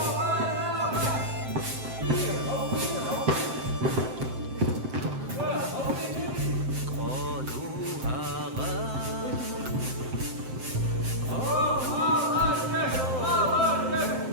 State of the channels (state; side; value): late; left; 7.7 ms